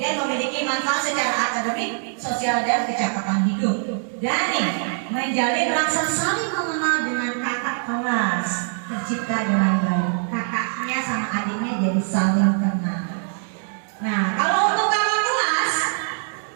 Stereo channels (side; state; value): left; silent; 56 dB below the other